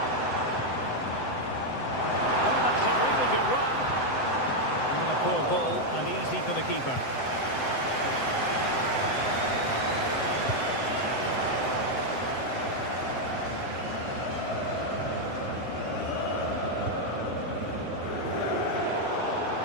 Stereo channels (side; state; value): right; late; 7.8 ms